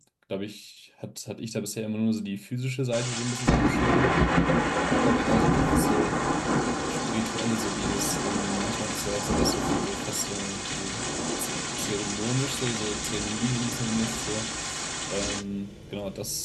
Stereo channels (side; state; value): both; identical; correlation 1.00